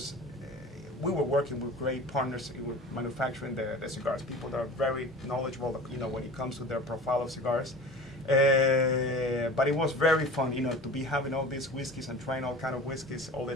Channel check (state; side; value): normal; both; correlation 0.38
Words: we were working with great partners with manufacturing the cigars. People that are very knowledgeable, when it comes to their profile of cigars. But it was very fun, to be having all these whiskeys and trying all kind of whiskeys all the